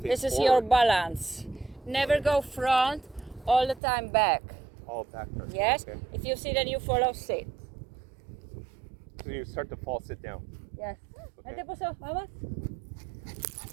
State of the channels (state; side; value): drops out; left; at 3.8 s